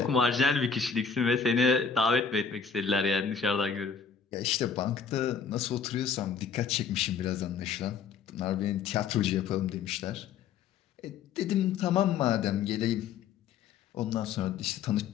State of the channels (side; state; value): right; quieter; 6.3 dB